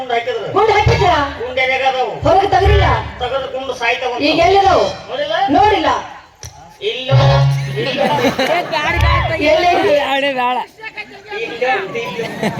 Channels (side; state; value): both; identical; correlation 1.00